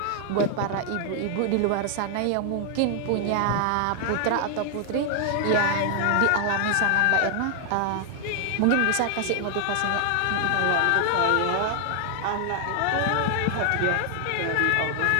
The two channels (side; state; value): both; different; correlation 0.00